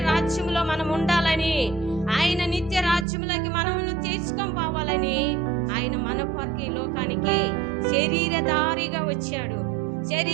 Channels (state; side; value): drops out; left; at 3.1 s